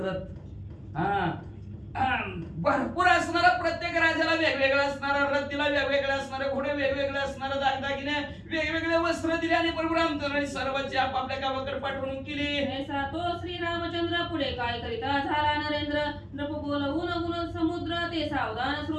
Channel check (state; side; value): identical; both; correlation 1.00